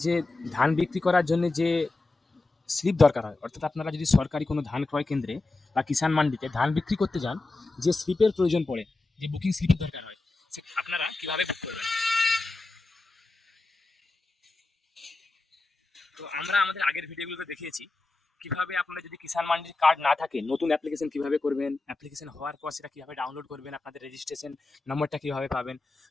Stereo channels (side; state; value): right; quieter; 3.3 dB